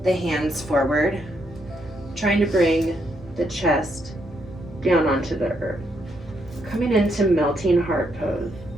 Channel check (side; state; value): both; normal; correlation 0.76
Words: the hands forward, trying to bring the chest down onto the earth. Coming into melting heart pose.